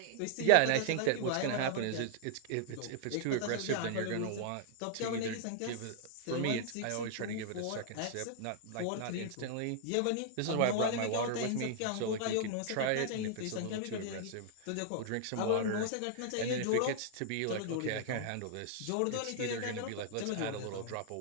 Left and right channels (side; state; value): both; different; correlation -0.01